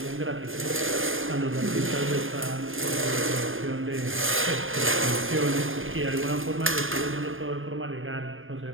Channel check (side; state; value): left; late; 0.59 ms